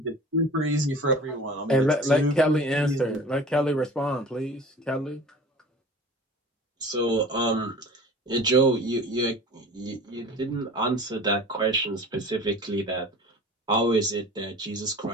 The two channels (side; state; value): both; normal; correlation 0.41